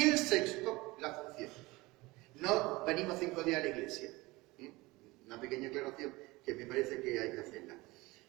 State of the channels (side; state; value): left; quieter; 21.7 dB